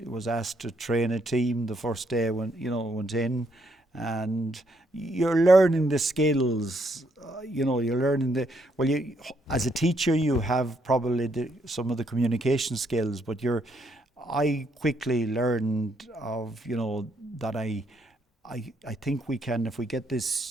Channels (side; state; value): both; normal; correlation 0.74